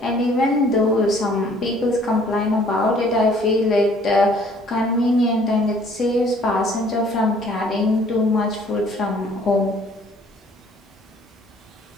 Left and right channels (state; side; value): normal; both; correlation 0.58